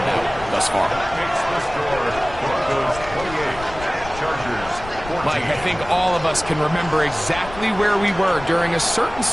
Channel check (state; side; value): noise; left; rumble, 14 dB below the sound